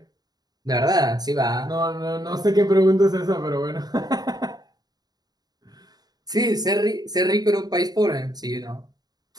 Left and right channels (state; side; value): late; left; 0.19 ms